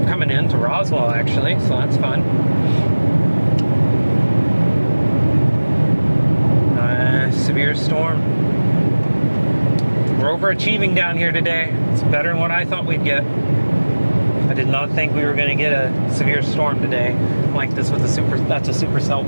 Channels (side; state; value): both; inverted; correlation -1.00